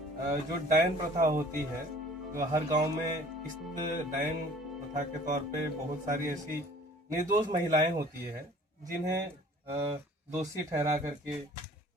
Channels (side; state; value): both; normal; correlation 0.51